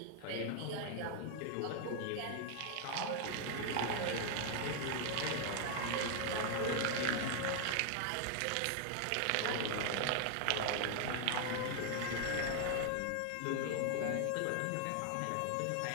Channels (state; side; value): different; both; correlation 0.00